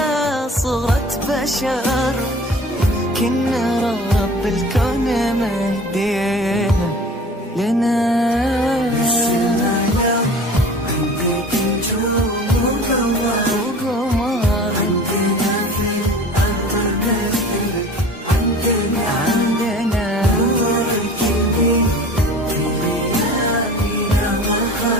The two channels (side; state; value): both; normal; correlation 0.42